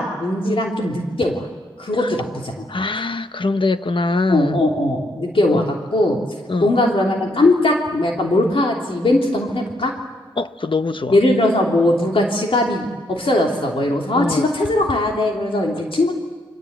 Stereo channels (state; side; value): normal; both; correlation 0.74